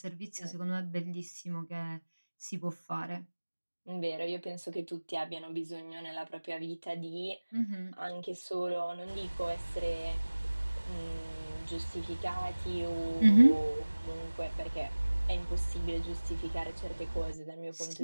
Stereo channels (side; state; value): both; inverted; correlation -1.00